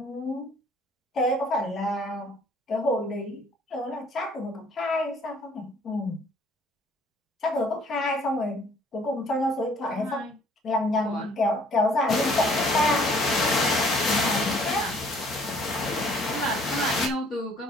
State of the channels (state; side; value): normal; both; correlation 0.59